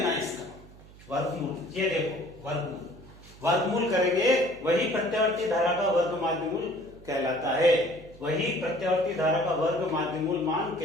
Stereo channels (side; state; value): right; noise; hum, 21 dB below the sound